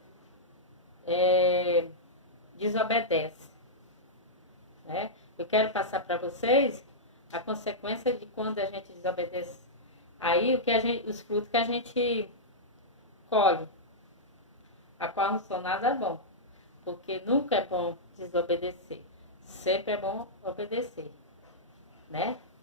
desobedece. Né? Eu quero passar para vocês a consequência de quando a gente desobedece. Aí os frutos que a gente colhe, a qual não são nada bom. Porque nunca é bom desobedecer. Sempre é bom obedecer. Né?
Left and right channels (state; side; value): normal; both; correlation -0.10